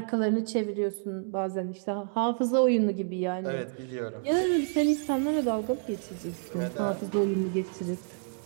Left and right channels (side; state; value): left; silent; digital silence